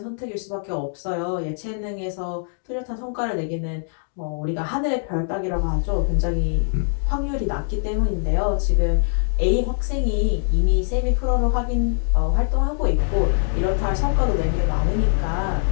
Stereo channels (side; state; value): right; silent; digital silence